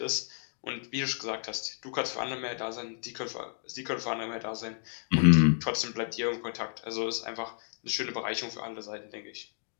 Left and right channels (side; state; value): right; silent; digital silence